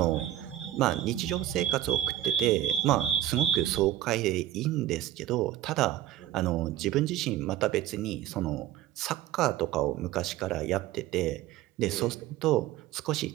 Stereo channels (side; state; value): left; quieter; 13.0 dB